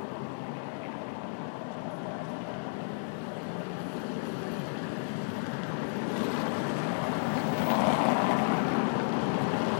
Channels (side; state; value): right; silent; digital silence